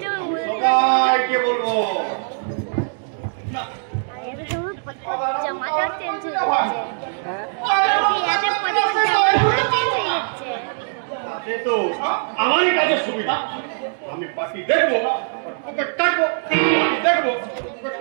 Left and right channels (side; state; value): left; silent; digital silence